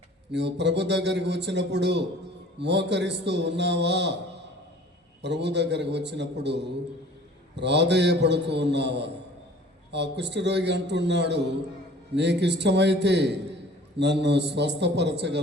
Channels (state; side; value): normal; both; correlation 0.49